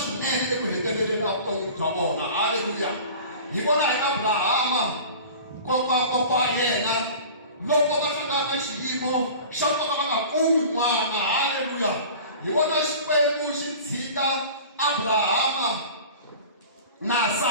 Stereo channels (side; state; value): both; inverted; correlation -0.39